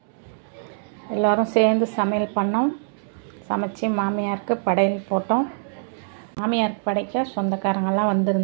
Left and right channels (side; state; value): left; silent; digital silence